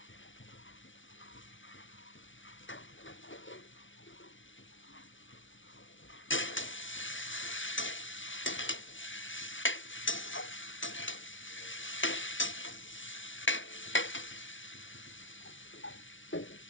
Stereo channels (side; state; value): right; late; 0.56 ms